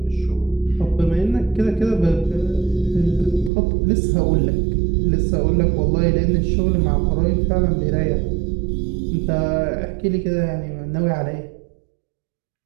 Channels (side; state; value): left; drops out; at 3.5 s